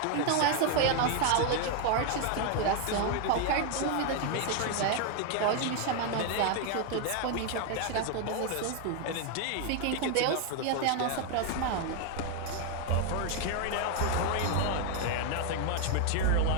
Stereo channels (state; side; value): different; both; correlation 0.01